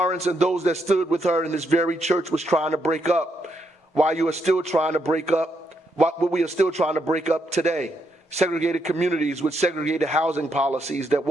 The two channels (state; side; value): normal; both; correlation 0.78